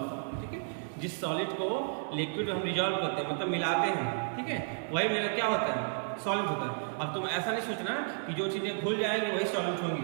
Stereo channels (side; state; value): left; silent; digital silence